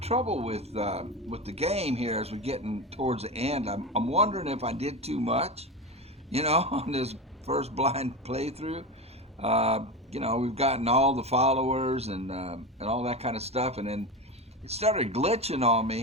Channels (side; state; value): both; normal; correlation 0.22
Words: with the game here as we're getting towards the end. I'm wondering if I did too much, you know, on this first blind playthrough. You know, we've gotten all the followers and all that kind of stuff, and then it started glitching on